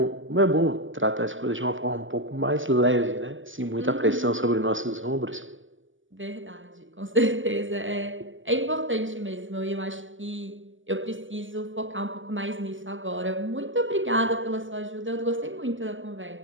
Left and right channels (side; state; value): left; late; 0.57 ms